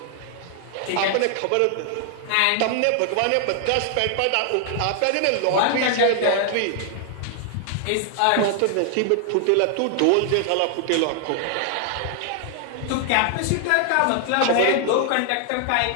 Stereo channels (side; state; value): both; different; correlation 0.00